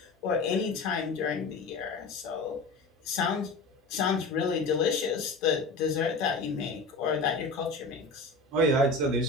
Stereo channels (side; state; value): right; quieter; 3.3 dB